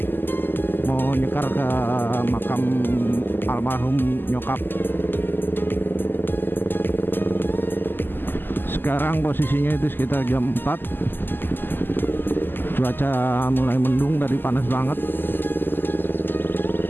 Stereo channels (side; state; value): right; late; 0.094 ms